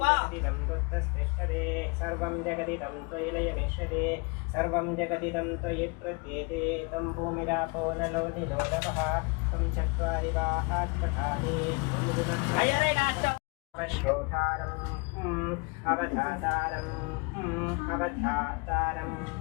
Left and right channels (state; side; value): quieter; right; 30.5 dB